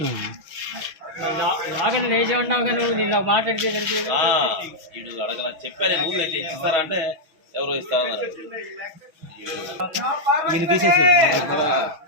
నాగని వేసి ఉన్నావు కానీ నిన్న మాట్లాడితే వీడు అడగల చెప్పాను. రూల్ అయితే ఇస్తారా అంటే ఎవరో ఇస్తారన్నారు. ఈరోజు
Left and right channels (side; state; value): left; late; 6.1 ms